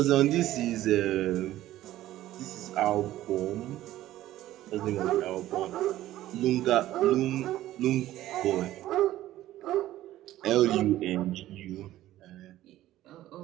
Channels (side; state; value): left; quieter; 14.4 dB